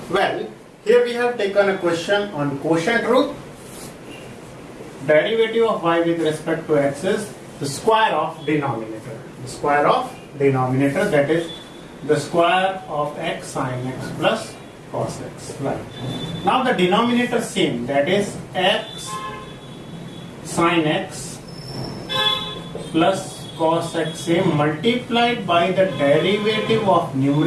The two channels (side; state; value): both; identical; correlation 1.00